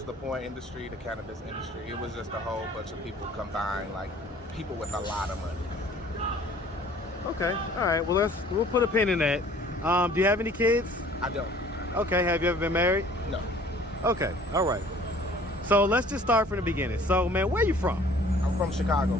the porn industry, the cannabis industry. It was just a whole bunch of people combined, like people with a lot of money. Okay, all right. Well, we'll put a pin in that. Do you have any kids? I don't. Okay. Have you ever been married? No. Okay. All right. So let's just start from the beginning. So, man, where you from? I'm from Chicago,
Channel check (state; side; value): normal; both; correlation 0.52